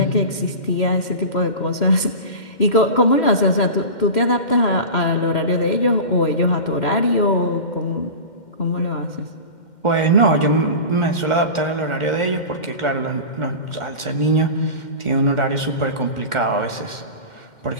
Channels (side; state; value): right; late; 2.1 ms